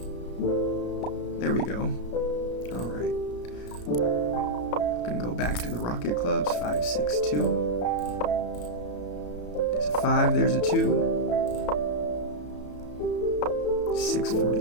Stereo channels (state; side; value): late; right; 33 ms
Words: There we go. All right. Gonna go back to the rocket clubs. 5, 6, 2. There's a 5. There's a 2.